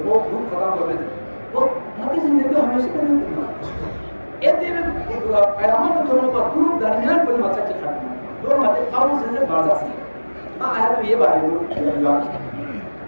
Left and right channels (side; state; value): both; inverted; correlation -1.00